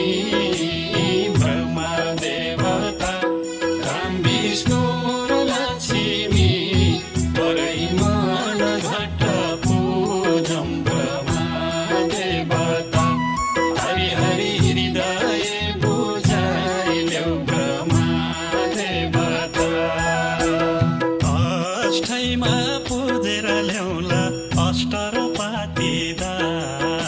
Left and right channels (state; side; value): identical; both; correlation 1.00